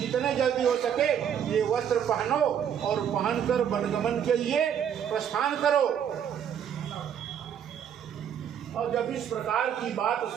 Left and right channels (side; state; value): left; quieter; 8.8 dB